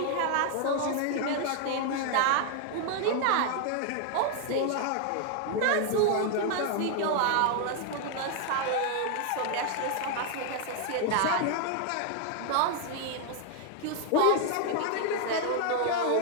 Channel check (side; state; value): both; different; correlation 0.00